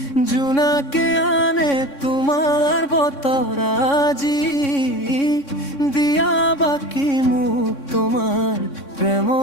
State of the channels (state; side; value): late; right; 3.6 ms